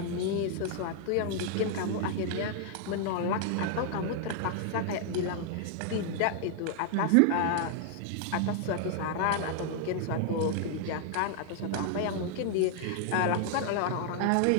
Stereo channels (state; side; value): different; both; correlation 0.00